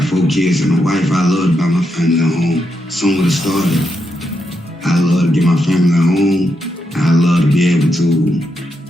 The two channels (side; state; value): both; normal; correlation 0.83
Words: 4 kids and a wife. I love to buy my family a home. Some would have started. I love to get my family a home. I love to be able to